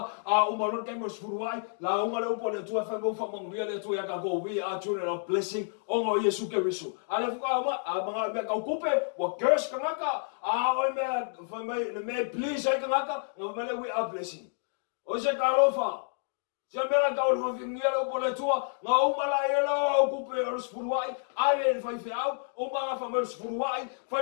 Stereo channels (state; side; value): silent; right; digital silence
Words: a o malor ka mo spuruai la o ngale o le tua fa go fa mo ile tua ya ka go we are children of blessing o ngo Yesu Kristo ale fa ma a mga me ka okupe wa curse ka ngaka a o me fa mai me please ka ngaka no me we are blessing o se ka lo fa se mera ka o fingira o le tua nga o mala yelo okupe o spuruai ale fa fiau o mga fa mo spuruai